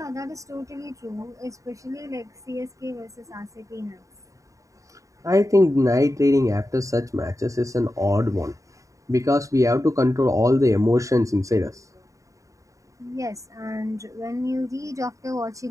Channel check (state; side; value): late; left; 0.16 ms